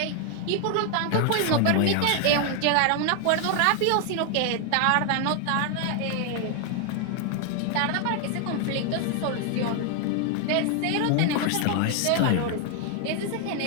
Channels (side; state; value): both; different; correlation 0.00